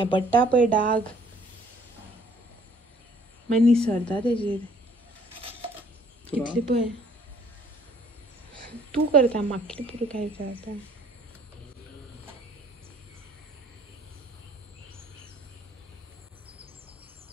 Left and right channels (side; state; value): both; normal; correlation 0.59